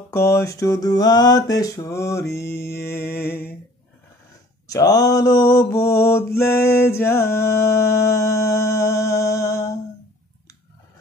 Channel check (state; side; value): normal; both; correlation 0.51